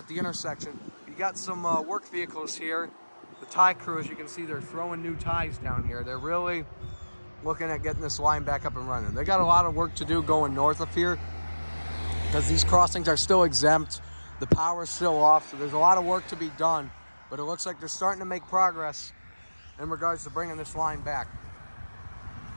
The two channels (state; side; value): inverted; both; correlation -1.00